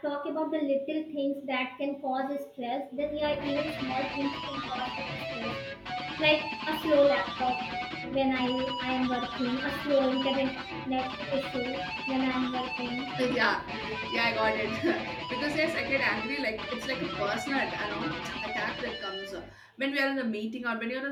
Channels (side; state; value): both; identical; correlation 1.00